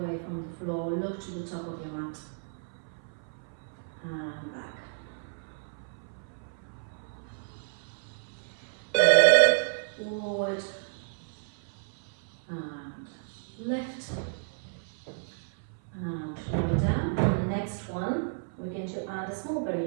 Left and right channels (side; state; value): left; silent; 57 dB below the other